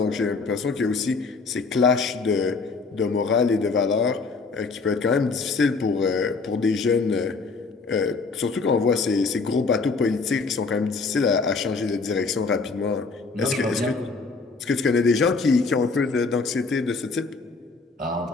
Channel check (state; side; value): quieter; right; 4.3 dB